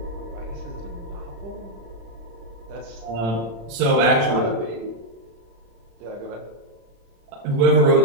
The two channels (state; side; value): late; left; 35 ms